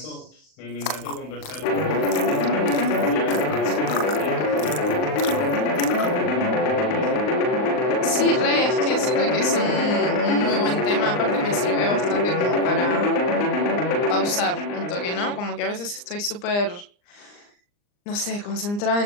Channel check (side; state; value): right; late; 39 ms